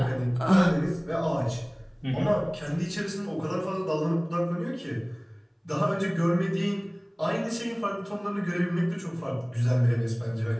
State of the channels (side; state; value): both; identical; correlation 1.00